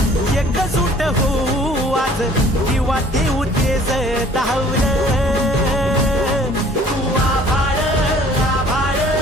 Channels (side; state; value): both; normal; correlation 0.53